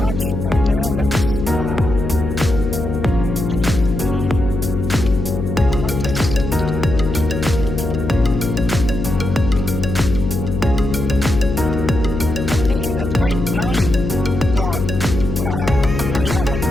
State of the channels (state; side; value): noise; left; hum, 4 dB below the sound